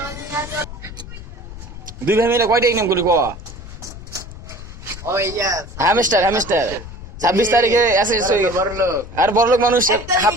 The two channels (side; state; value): left; noise; rumble, 13 dB below the sound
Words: দুই ভাই মিলে কয়টা ইনকাম করি ক হামিস্টার হামিস্টার 26 তারিখে এসে আর বড়লোক মানুষ হাফ